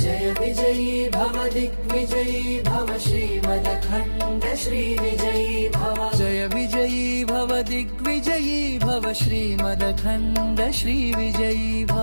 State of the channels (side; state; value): both; inverted; correlation -1.00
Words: जय विजयी भव दिग्विजयी भव श्रीमदखण्ड श्रीविजयी भव जय विजयी भव दिग्विजयी भव श्रीमदखण्ड श्रीविजयी